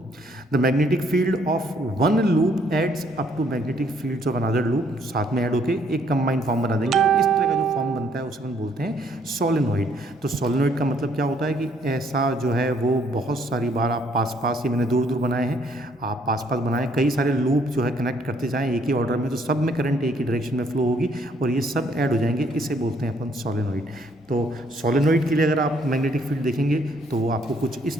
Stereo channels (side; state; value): both; normal; correlation 0.67